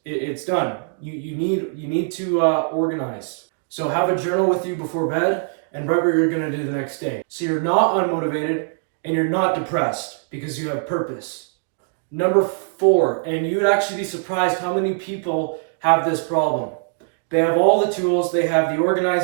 It's done. You need to organize. So have a journal with you before bed and write what you're gonna do the next day. So you're not unmotivated and you're not depressed, because you have purpose. Number 4, and you would actually be surprised how many people have this problem. They have all the tools, they have the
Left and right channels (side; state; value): left; silent; digital silence